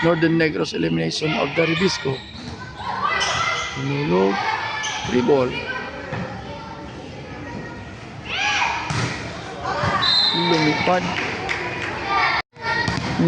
Northern Negros elimination of the Ribisco. Tinulog, 3 ball. Lumipad.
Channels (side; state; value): both; identical; correlation 1.00